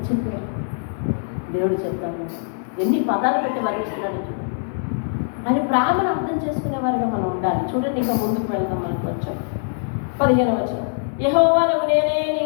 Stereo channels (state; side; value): silent; right; 61 dB below the other